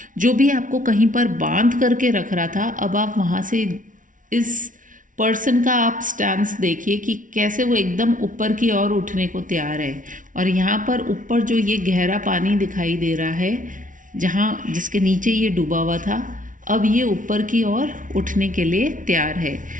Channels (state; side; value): late; left; 0.38 ms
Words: जो भी आपको कहीं पर बांध करके रख रहा था, अब आप वहाँ से इस पर्सन का आप स्टैंस देखिए कि कैसे वो एकदम ऊपर की ओर उठने को तैयार है। और यहाँ पर ऊपर जो ये गहरा पानी दिखाई दे रहा है, जहाँ जिसके नीचे ये डूबा हुआ था, अब ये ऊपर की ओर उठने के लिए तैयार है।